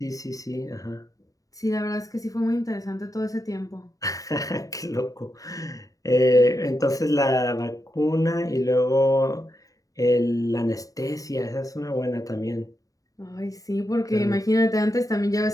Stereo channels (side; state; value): right; late; 0.17 ms